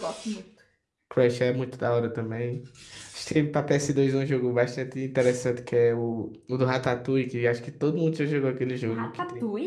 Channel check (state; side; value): identical; both; correlation 1.00